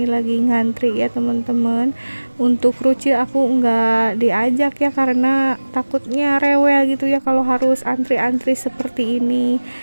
lagi ngantri ya teman-teman. Untuk kerucil aku nggak diajak ya, karena takutnya rewel gitu ya kalau harus antri-antri seperti ini.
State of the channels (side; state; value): both; inverted; correlation -1.00